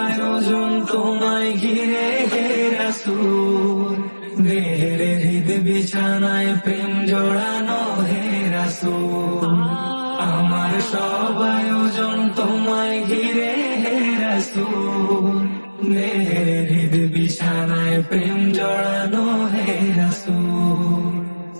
আয়োজন তোমায় ঘিরে হে রাসূল, দেহের হৃদ বিছানায় প্রেম জড়ানো হে রাসূল, আমার সব আয়োজন তোমায় ঘিরে হে রাসূল, দেহের হৃদ বিছানায় প্রেম জড়ানো হে রাসূল,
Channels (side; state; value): both; inverted; correlation -1.00